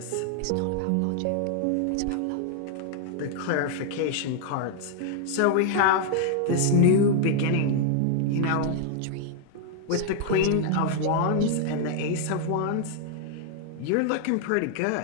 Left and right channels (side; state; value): both; different; correlation 0.00